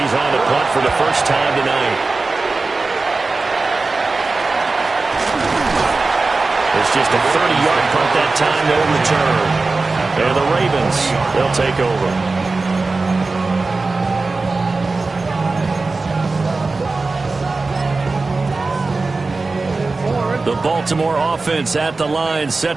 on to punt for the first time tonight. It's just a 30-yard punt that time, no return. And the Ravens, they'll take over. The Baltimore offense at the line,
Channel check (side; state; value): left; quieter; 3.7 dB